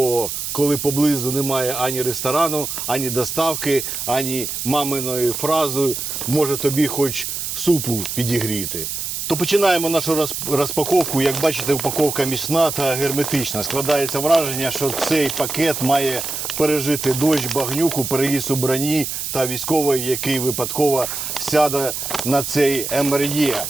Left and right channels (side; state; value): right; noise; hiss, 4 dB below the sound